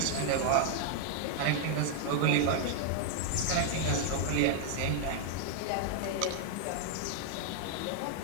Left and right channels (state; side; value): different; both; correlation -0.01